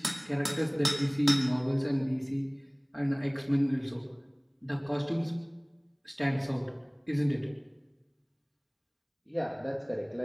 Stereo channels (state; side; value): identical; both; correlation 1.00